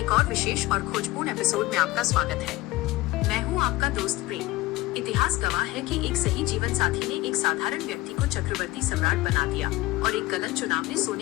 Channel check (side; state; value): right; quieter; 18.5 dB